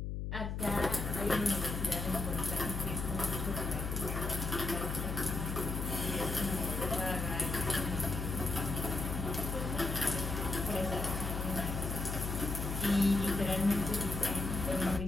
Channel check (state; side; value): noise; left; hum, 3 dB below the sound